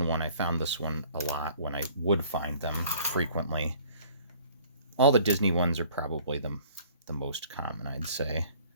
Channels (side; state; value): both; inverted; correlation -0.54